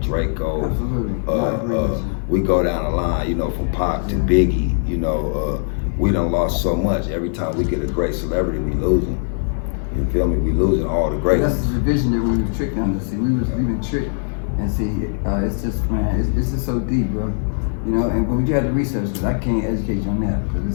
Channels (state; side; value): silent; right; digital silence